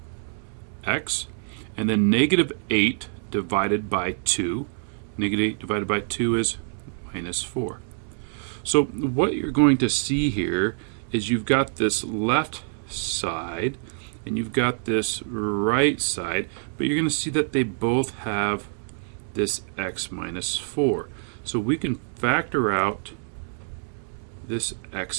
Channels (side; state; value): left; silent; 61 dB below the other